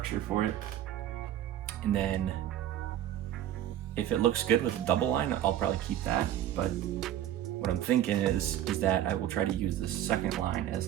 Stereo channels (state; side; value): quieter; left; 11.7 dB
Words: for it. And then if it looks good with a double line, I'll probably keep that. But what I'm thinking is that I will try to use this second line as